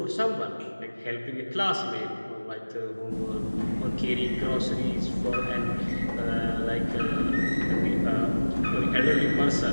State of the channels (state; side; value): inverted; both; correlation -1.00